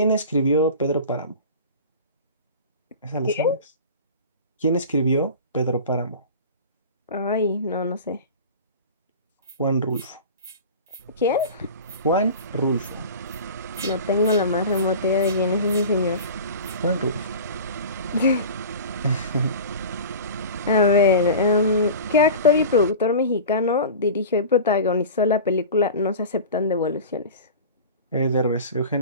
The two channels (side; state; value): both; inverted; correlation -0.35